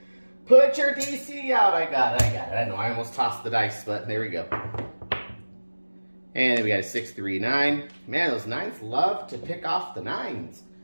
put your DC out. I got it. I know I almost tossed the dice, but there we go. And then we got a 6, 3, 9. Man, those 9s love to pick off the 9s.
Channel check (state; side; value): inverted; both; correlation -1.00